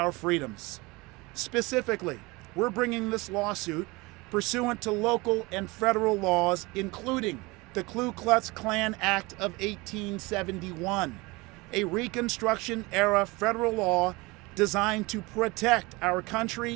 freedoms. Specifically, we're bringing this lawsuit pursuant to local and federal laws, including the Ku Klux Klan Act of 1871, a Reconstruction-era federal law designed to protect our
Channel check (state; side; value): quieter; left; 23.9 dB